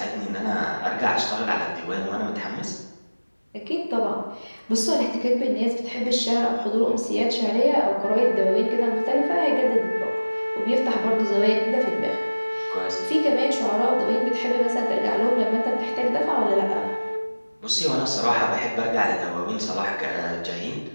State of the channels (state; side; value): inverted; both; correlation -1.00